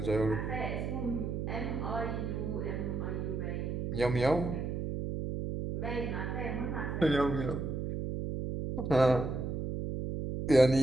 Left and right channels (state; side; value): noise; right; hum, 3 dB below the sound